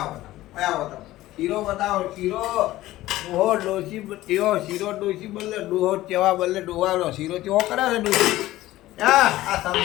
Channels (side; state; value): right; quieter; 16.1 dB